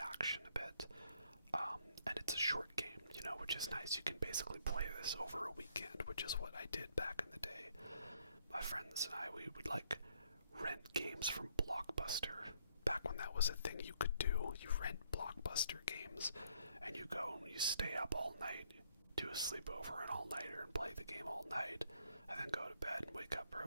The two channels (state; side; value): inverted; both; correlation -0.69